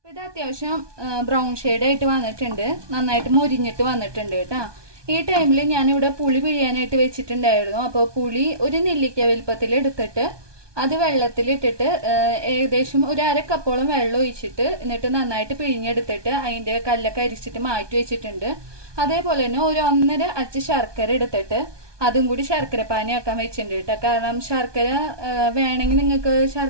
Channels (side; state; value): left; late; 1.2 ms